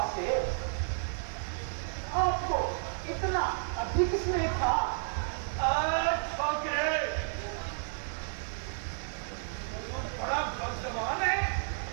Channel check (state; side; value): silent; left; 56 dB below the other